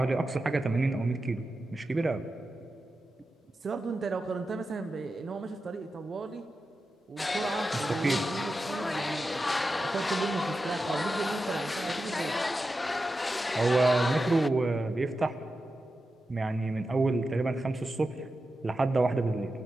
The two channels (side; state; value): both; normal; correlation 0.91